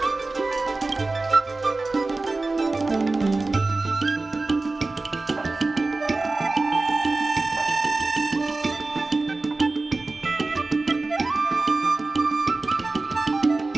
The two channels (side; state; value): left; quieter; 3.4 dB